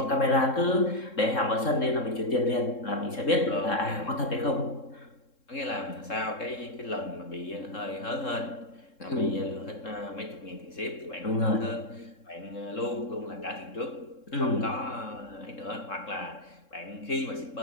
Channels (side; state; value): right; late; 3.7 ms